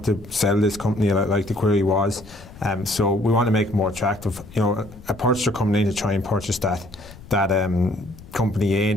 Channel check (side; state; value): left; noise; rumble, 19 dB below the sound